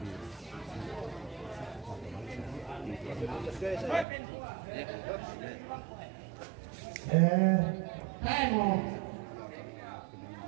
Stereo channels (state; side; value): drops out; left; at 4.0 s